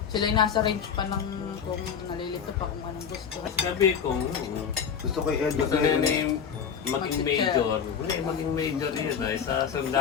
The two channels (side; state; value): right; quieter; 7.3 dB